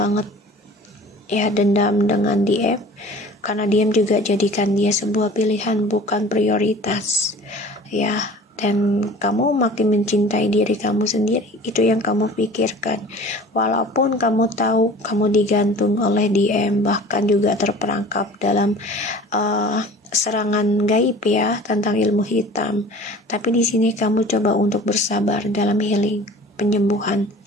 ya, dendam dengan DM, karena DM juga jadikan dia sebuah pilihan, bukan prioritas ya. Dan kamu makin mencintai diri kamu sendiri, itu yang kamu pikirkan. Walaupun kamu tahu kamu digantung oleh DM, bahkan juga terperangkap dalam serangan gaib ya tentang ilmu hitam, tapi di sini kamu coba untuk bersabar dalam healing, penyembuhan.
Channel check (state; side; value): normal; both; correlation 0.44